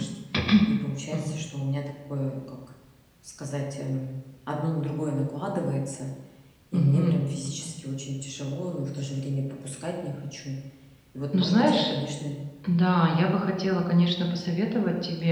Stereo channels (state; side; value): identical; both; correlation 1.00